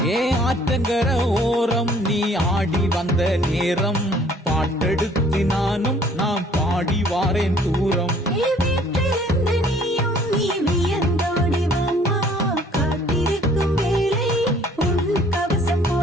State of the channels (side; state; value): both; normal; correlation 0.57